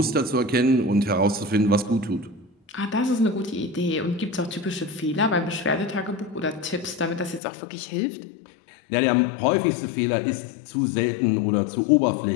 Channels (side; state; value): right; drops out; at 7.4 s